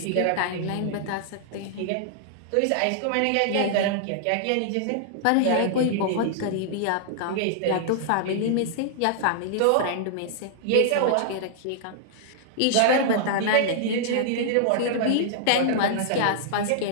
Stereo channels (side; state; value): both; different; correlation -0.01